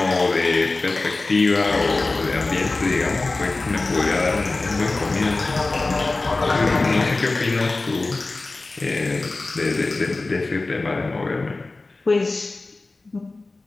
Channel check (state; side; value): quieter; right; 3.3 dB